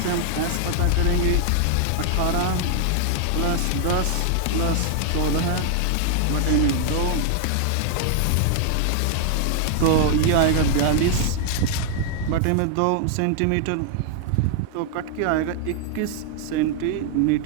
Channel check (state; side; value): different; both; correlation 0.00